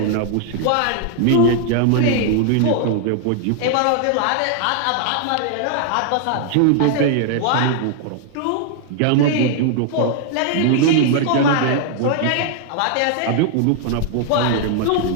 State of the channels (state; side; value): different; both; correlation 0.00